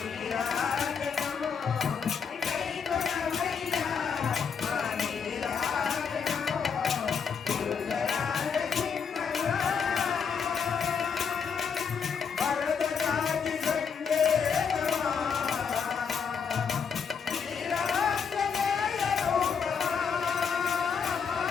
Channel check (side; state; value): right; quieter; 6.4 dB